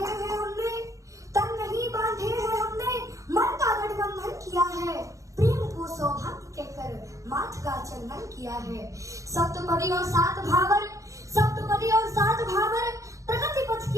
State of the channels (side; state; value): left; late; 0.15 ms